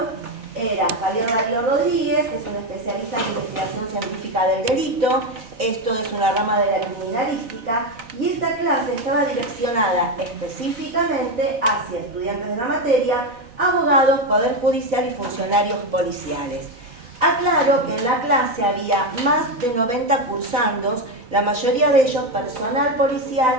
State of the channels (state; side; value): late; left; 3.9 ms